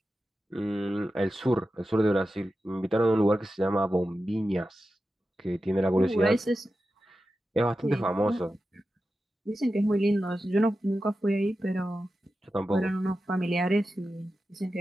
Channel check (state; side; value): normal; both; correlation 0.92